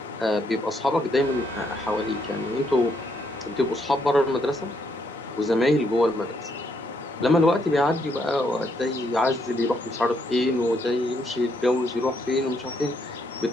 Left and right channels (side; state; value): both; normal; correlation 0.74